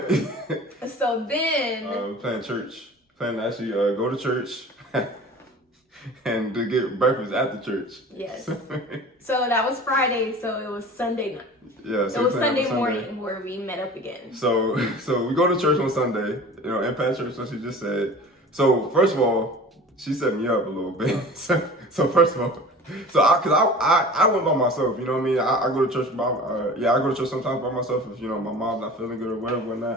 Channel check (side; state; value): both; normal; correlation 0.40